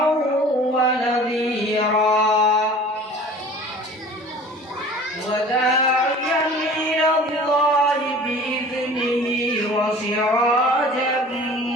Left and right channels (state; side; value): normal; both; correlation 0.44